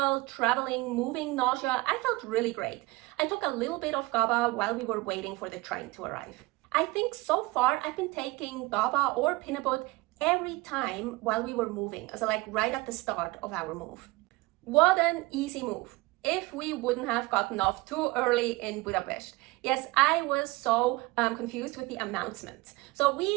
traveling, moving nausea, I felt really great. I took a little bit of GABA while we were waiting for the train to arrive. I think so far I've been taking GABA or Pinabot every time while we were moving, so like right at the start of our move. What an easy move. If we wouldn't have gotten off too early in Budapest. Yes, I was so confused with the announcements. So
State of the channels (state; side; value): quieter; left; 22.4 dB